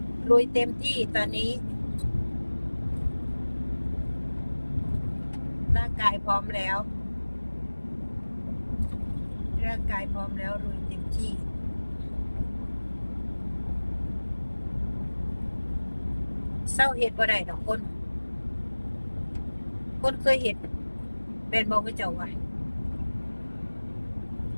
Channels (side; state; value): both; inverted; correlation -1.00